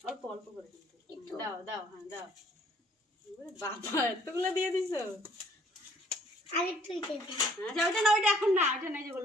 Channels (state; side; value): normal; both; correlation 0.60